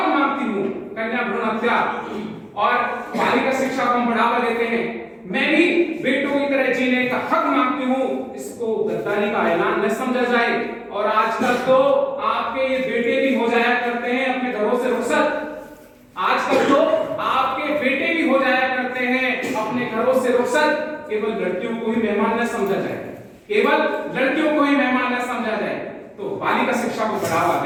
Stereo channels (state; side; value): identical; both; correlation 1.00